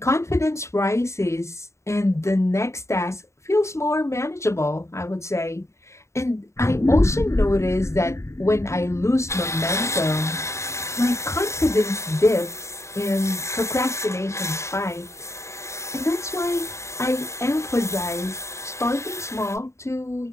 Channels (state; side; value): late; right; 0.14 ms